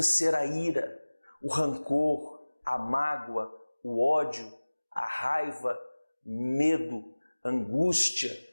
a ira, o rancor, a mágoa, o ódio, a raiva, medo, angústia,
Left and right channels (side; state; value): both; inverted; correlation -1.00